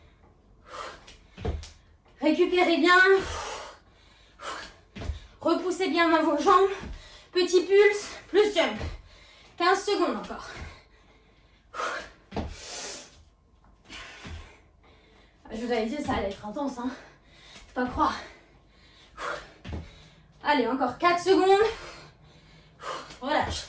Récupérez bien. Repoussez bien dans vos jambes. Petit pulse, plus jump. 15 secondes encore. Je vous avais dit, ça allait être intense, hein. Faut pas croire. Allez, encore 4 secondes. Relâche.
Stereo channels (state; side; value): identical; both; correlation 1.00